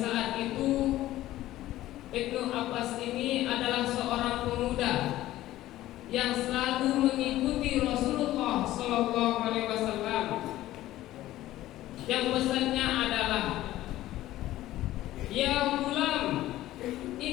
itu Ibnu Abbas ini adalah seorang pemuda yang selalu mengikuti Rasulullah sallallahu alaihi wasallam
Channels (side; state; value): right; quieter; 15.1 dB